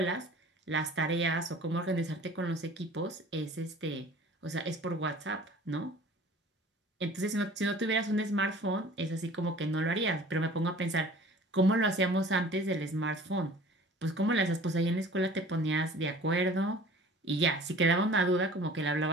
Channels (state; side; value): normal; both; correlation 0.46